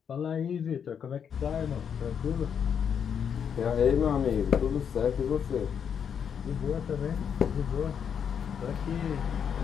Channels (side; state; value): right; quieter; 7.6 dB